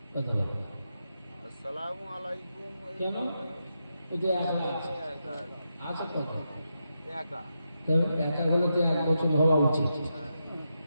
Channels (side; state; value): both; inverted; correlation -0.85